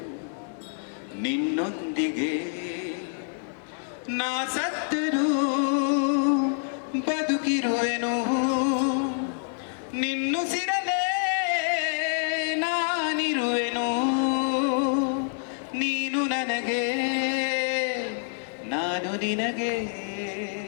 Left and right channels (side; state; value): right; silent; digital silence